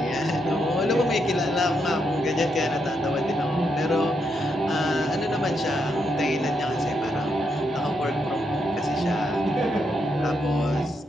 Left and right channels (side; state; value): both; normal; correlation 0.80